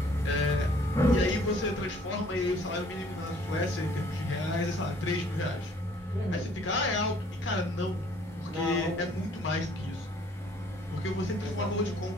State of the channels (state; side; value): normal; both; correlation 0.58